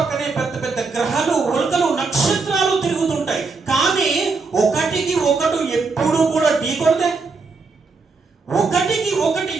పెద్ద పెద్ద గ్రహాలు, ఉల్కలు, నక్షత్రాలు తిరుగుతుంటాయి. కానీ ఒకటికి ఒకటి ఎప్పుడు కూడా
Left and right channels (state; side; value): quieter; left; 4.2 dB